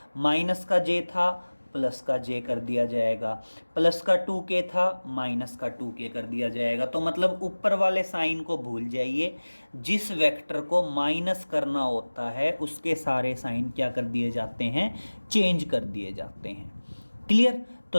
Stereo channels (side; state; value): both; inverted; correlation -1.00